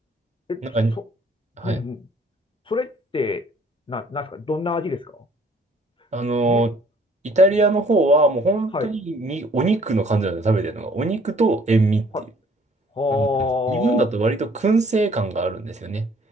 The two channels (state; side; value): normal; both; correlation 0.58